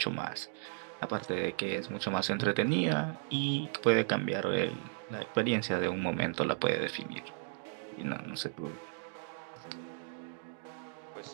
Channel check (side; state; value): left; silent; 54 dB below the other